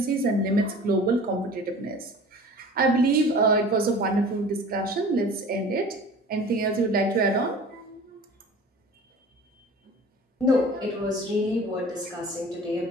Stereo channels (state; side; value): normal; both; correlation 0.42